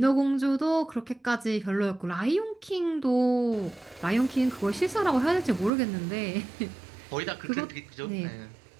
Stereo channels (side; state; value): left; drops out; at 5.7 s